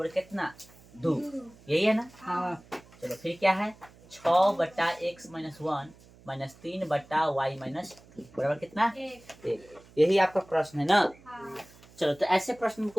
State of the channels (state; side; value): noise; right; hum, 25 dB below the sound